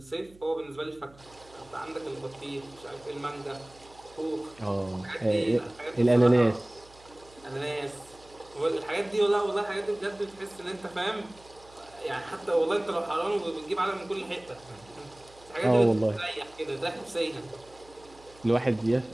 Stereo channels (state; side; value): noise; right; hum, 25 dB below the sound